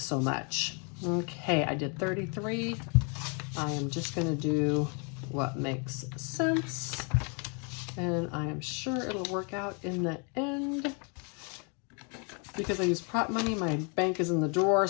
much. Okay, I did 33. I am just going to do what makes sense, and I am sure it'll work out in the end. Because I use prop money, my bank is in the drawer,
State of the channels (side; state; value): right; quieter; 36.7 dB